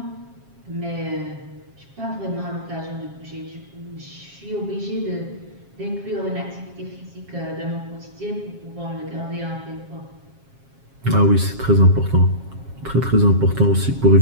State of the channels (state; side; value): late; left; 7.4 ms